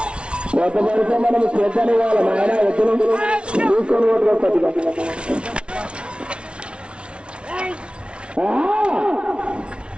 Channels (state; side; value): late; left; 0.058 ms